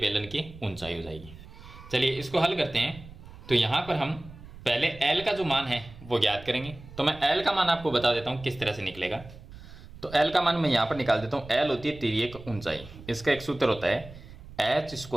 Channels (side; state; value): right; noise; rumble, 17 dB below the sound